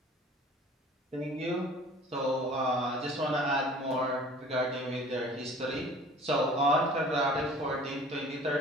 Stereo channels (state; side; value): normal; both; correlation 0.47